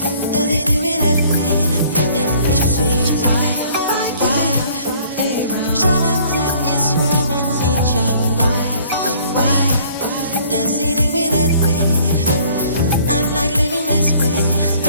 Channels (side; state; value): both; inverted; correlation -0.57